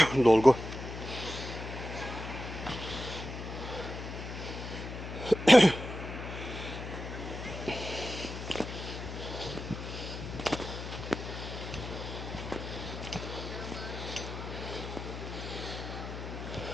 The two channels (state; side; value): noise; left; hum, 8 dB below the sound